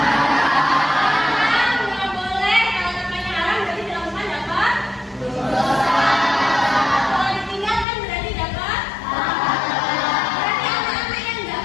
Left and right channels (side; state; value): right; drops out; at 7.9 s